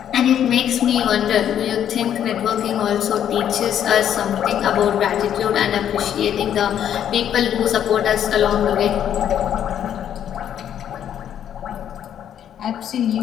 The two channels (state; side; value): quieter; right; 9.8 dB